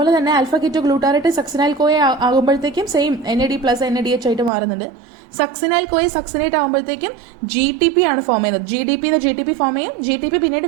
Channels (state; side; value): drops out; left; at 4.5 s